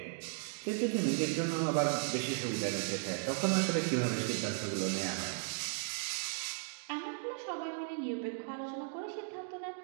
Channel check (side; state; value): left; silent; digital silence